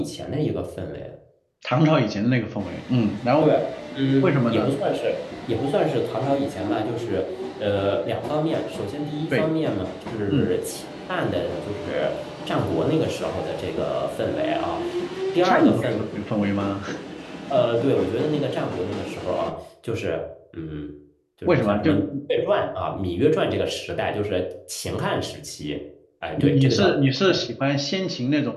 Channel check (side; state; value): both; identical; correlation 1.00